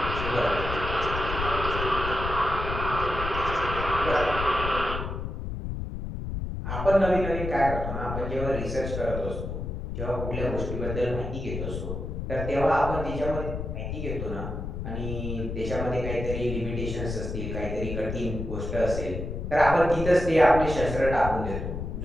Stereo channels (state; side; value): noise; left; rumble, 5 dB below the sound